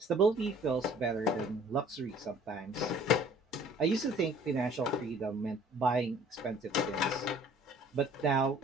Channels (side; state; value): both; normal; correlation 0.53